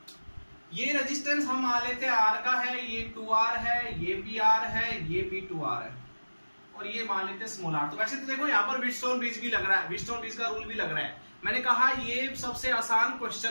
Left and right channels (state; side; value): inverted; both; correlation -1.00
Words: ये रेजिस्टेंस हम मान लेते हैं आर का है, ये 2R है, ये भी आर है, ये भी 2R है, और ये मान लेते हैं स्मॉल आर। तो वैसे तो देखो यहाँ पर व्हीटस्टोन ब्रिज भी लग रहा है, व्हीटस्टोन ब्रिज का रूल भी लग रहा है। मैंने कहा ये सबसे आसान